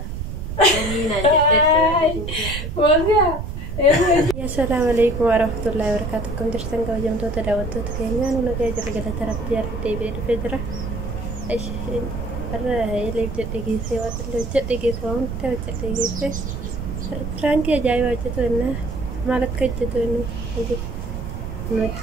أنا نجت فوزي السلام عليكم ورحمة الله وبركاته. كم درسنا كوجم تو تداوت تكينيا نونا كجر كذا ترى بيار تبي الفجرة إيش أنا اللي جت سوى اللي جت سوى أنت جت فرانكي جاي وجهت وإنه مالك جت وإنه عندي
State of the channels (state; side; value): noise; right; rumble, 5 dB below the sound